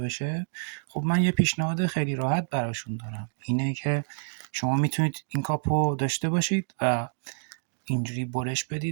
خب من یه پیشنهاد خیلی راحت براشون دارم، اینه که شما میتونید این کاپ رو داشته باشید و اینجوری برش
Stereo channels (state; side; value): silent; left; digital silence